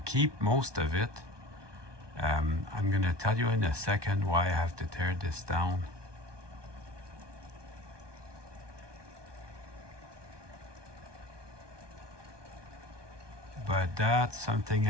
most of it. I'm going to tell you in a second why I have to tear this down. But that's something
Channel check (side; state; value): left; late; 1.2 ms